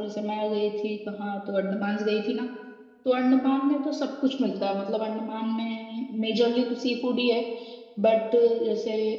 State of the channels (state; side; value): identical; both; correlation 1.00